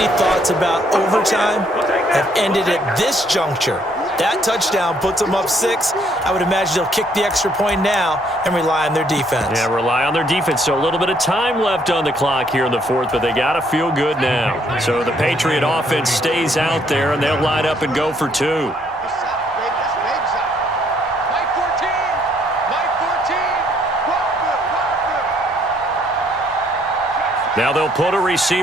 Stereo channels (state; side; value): normal; both; correlation 0.67